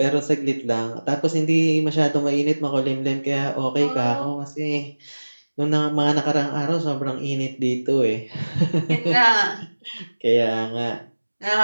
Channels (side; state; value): both; inverted; correlation -1.00